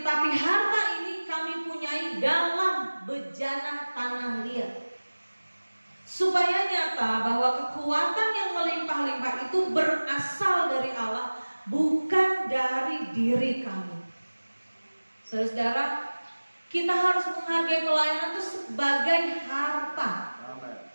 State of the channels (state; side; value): inverted; both; correlation -1.00